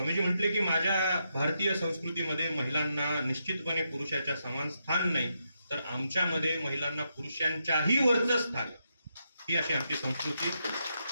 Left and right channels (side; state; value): both; inverted; correlation -0.82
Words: म्हटले की माझ्या भारतीय संस्कृतीमध्ये महिलांना निश्चितपणे पुरुषाच्या समान स्थान नाही, तर आमच्यामध्ये महिलांना पुरुषांच्याही वरचं स्थान, ही अशी आमची संस्कृती.